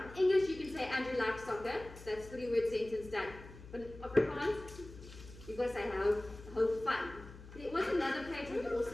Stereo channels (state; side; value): noise; left; hum, 16 dB below the sound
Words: In English, you can say Andrew likes soccer. That's 3-word sentence done. But in Afrikaans, you've got to say hou van. There was another page where we also